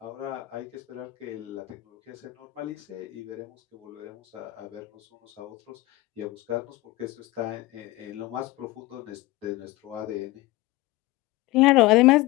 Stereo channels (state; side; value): quieter; right; 19.0 dB